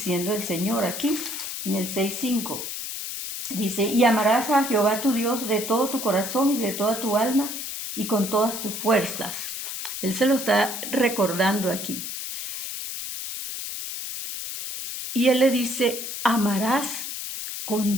el Señor aquí, en el 6:5. Dice, y amarás a Jehová tu Dios de todo tu corazón y de toda tu alma y con todas tus fuerzas. Él se lo está recordando aquí. Y Él le dice, amarás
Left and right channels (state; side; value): noise; left; hiss, 6 dB below the sound